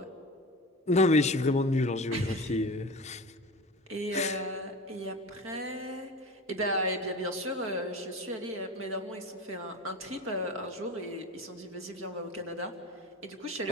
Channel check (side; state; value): both; normal; correlation 0.31